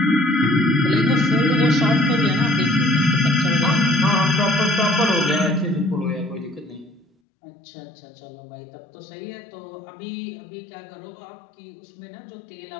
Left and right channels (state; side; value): drops out; right; at 7.1 s